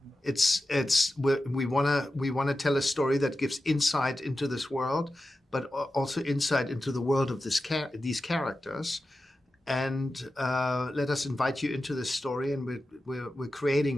We want to tell a story that gives insight into this world, but also insight into the world of these characters. And let us invite you into this story, and we're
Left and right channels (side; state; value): both; normal; correlation 0.92